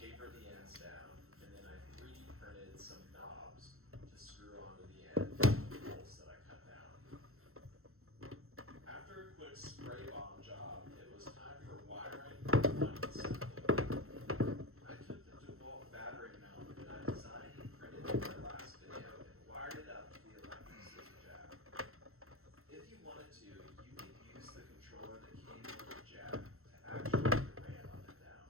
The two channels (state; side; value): late; left; 0.62 ms